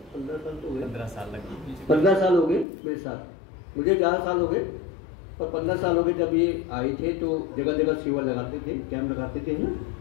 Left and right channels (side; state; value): right; drops out; at 2.7 s